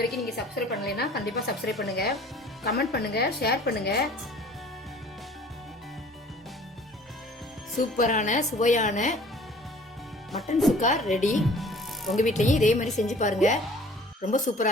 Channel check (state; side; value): normal; both; correlation 0.50